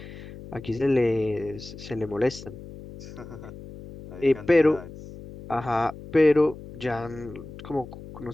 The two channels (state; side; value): noise; left; hum, 14 dB below the sound